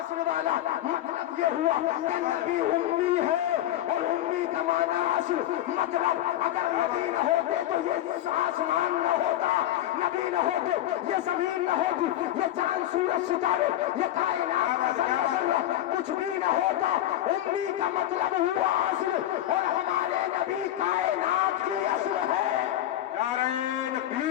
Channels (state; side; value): quieter; right; 13.1 dB